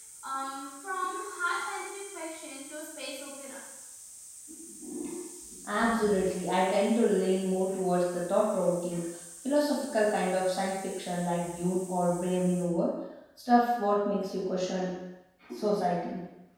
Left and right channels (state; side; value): identical; both; correlation 1.00